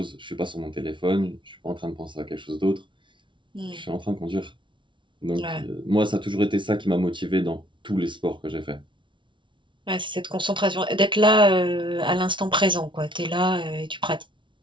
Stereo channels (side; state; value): left; late; 0.24 ms